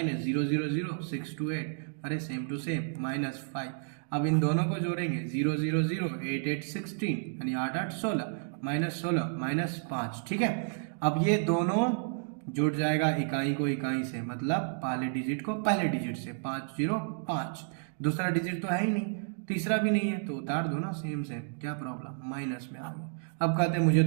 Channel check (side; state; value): left; silent; digital silence